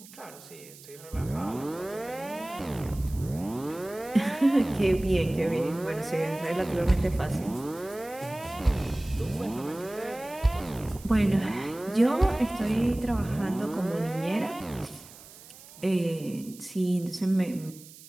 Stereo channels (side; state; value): right; noise; hiss, 19 dB below the sound